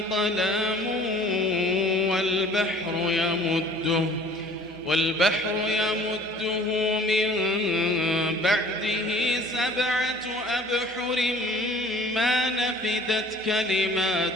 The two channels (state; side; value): normal; both; correlation 0.50